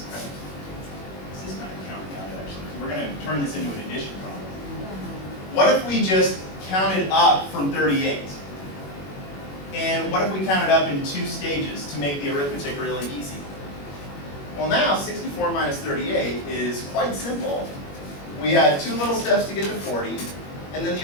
kind of counting out actually. We're going to turn this into an addition problem. What if we just counted up from 38? And what if we counted up in 2 stages to make the arithmetic really easy? Well, now 64 minus 38 is quite simple. We had 2 little steps to get to 40, and then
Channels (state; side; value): late; right; 21 ms